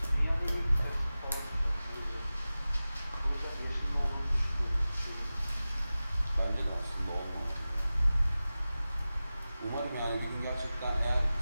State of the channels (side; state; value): both; inverted; correlation -0.96